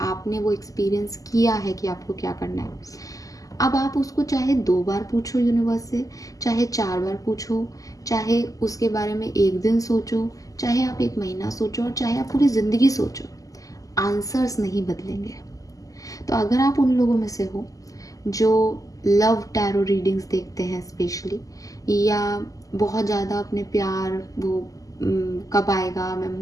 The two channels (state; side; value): late; right; 0.17 ms